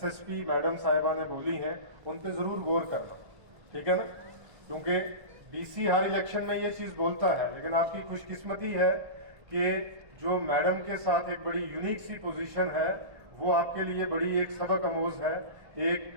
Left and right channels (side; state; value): left; late; 1.5 ms